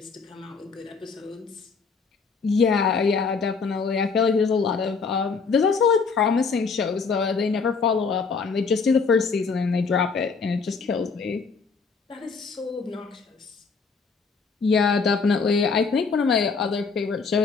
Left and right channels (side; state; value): right; quieter; 5.0 dB